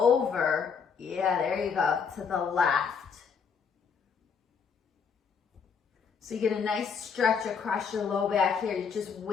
Yeah, there you go, to the left. So you get a nice stretch across your low back here. You're just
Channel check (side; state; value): right; quieter; 6.2 dB